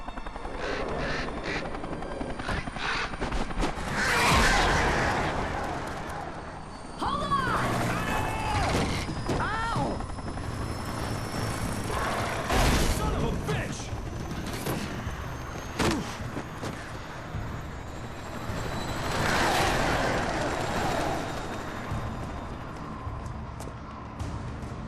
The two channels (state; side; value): identical; both; correlation 1.00